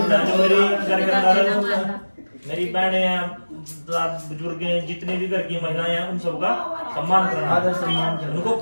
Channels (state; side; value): inverted; both; correlation -1.00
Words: है। जो मेरी घर के अंदर मेरी बहनें हैं, बुजुर्ग हैं, जितने भी घर की महिलाएं हैं, उन सबका सम्मान करना, आदर सम्मान करना, उनको